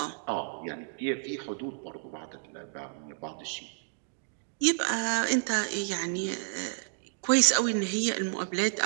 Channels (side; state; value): left; silent; digital silence